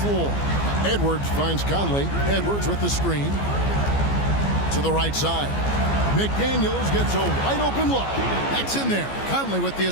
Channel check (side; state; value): right; late; 15 ms